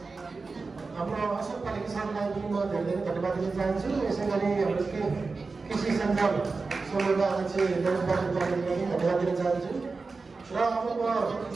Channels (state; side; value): quieter; left; 4.1 dB